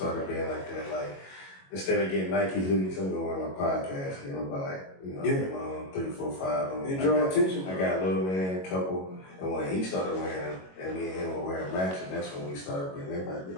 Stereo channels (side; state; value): right; late; 22 ms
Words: being like that. Like, instead of getting Nike hoodies, I'm gonna wear my podcast. You know, buy get my own 3, 4, 5. It draw attention. I got a little man, couple, and when he started wearing them, and me and him were wearing matching, that's when we started being. They might be